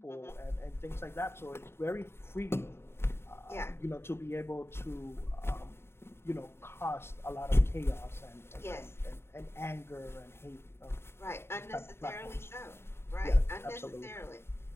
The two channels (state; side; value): late; right; 0.12 ms